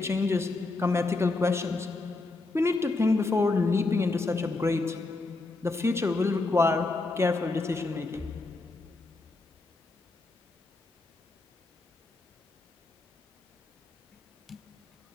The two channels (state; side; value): quieter; right; 3.4 dB